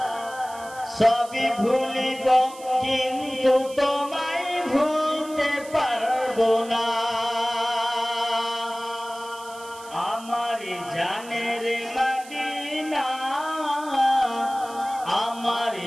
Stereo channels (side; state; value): right; noise; hiss, 18 dB below the sound